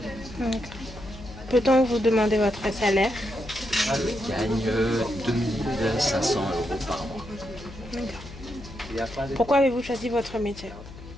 Peut-on vous demander votre salaire? Je gagne 2500 euros par mois. Pourquoi avez-vous choisi votre métier?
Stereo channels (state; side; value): noise; left; hum, 15 dB below the sound